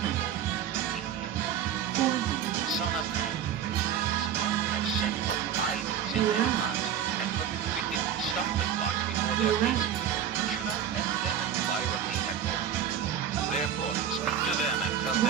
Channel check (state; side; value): quieter; left; 8.9 dB